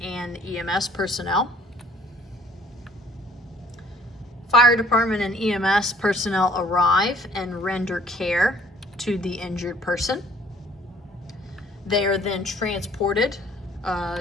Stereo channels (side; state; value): both; normal; correlation 0.58